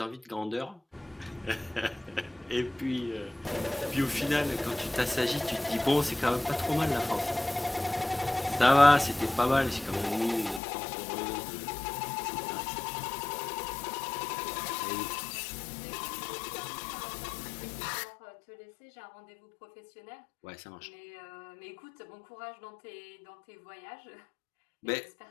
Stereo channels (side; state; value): right; drops out; at 10.6 s